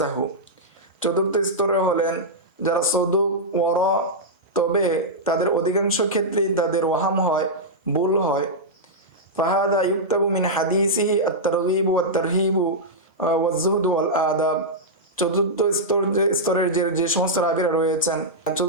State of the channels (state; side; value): normal; both; correlation -0.09